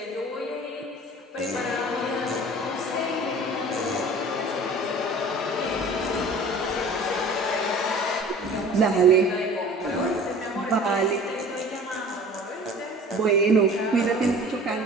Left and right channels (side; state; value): both; normal; correlation 0.44